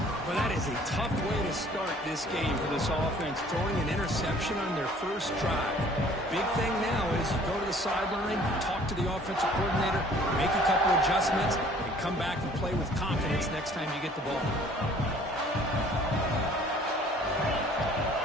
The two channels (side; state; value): both; normal; correlation 0.54